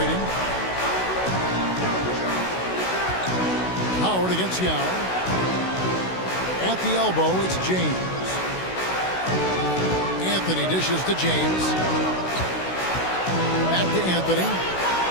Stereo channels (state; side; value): late; right; 16 ms